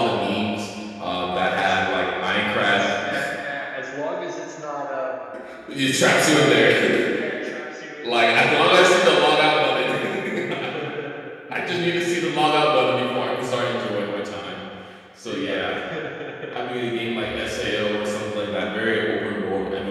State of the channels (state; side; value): identical; both; correlation 1.00